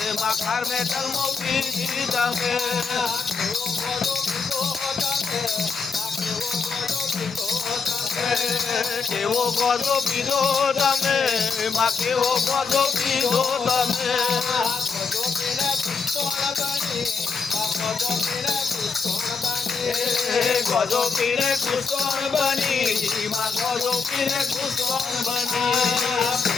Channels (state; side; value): quieter; right; 5.0 dB